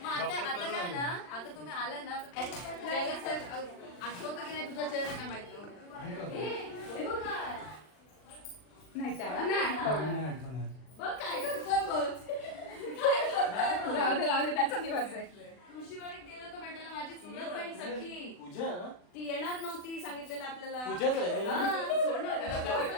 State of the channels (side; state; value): right; late; 39 ms